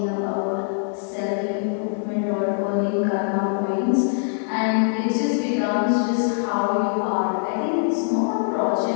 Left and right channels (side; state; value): right; silent; digital silence